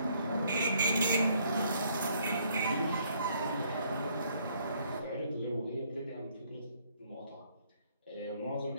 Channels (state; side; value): inverted; both; correlation -0.67